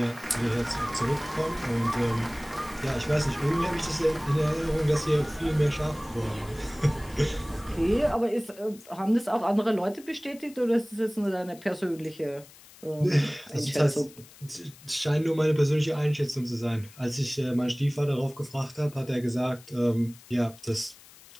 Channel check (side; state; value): left; noise; hiss, 22 dB below the sound